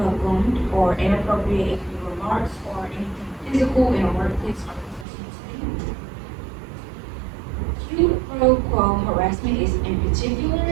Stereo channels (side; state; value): left; drops out; at 5.1 s